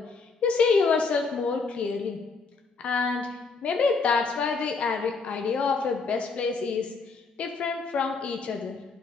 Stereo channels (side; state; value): right; quieter; 4.5 dB